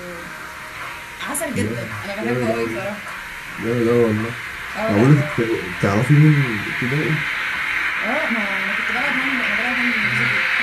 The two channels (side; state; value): both; identical; correlation 1.00